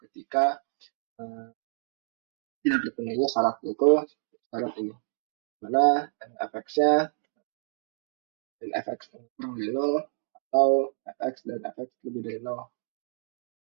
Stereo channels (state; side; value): silent; left; digital silence